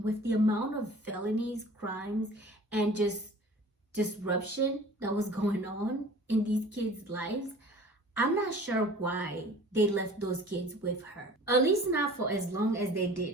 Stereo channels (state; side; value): normal; both; correlation 0.45